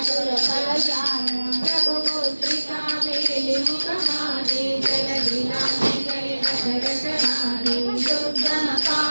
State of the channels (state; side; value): inverted; both; correlation -1.00